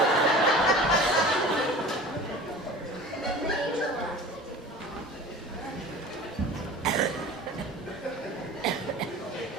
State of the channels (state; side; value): normal; both; correlation 0.39